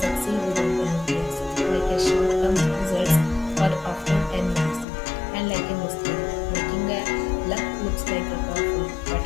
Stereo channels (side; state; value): right; drops out; at 4.9 s